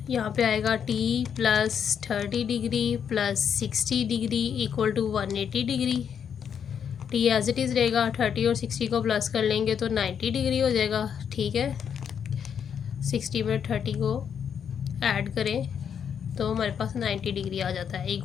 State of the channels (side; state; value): right; quieter; 7.8 dB